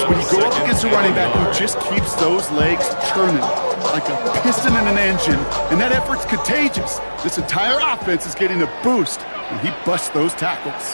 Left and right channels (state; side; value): inverted; both; correlation -1.00